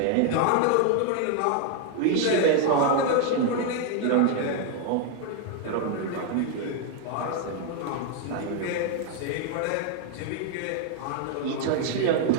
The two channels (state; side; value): different; both; correlation 0.00